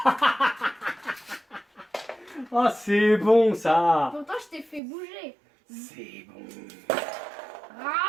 Ah, c'est bon ça. Pourtant, je t'ai fait bouger. C'est bon.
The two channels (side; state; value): left; drops out; at 4.8 s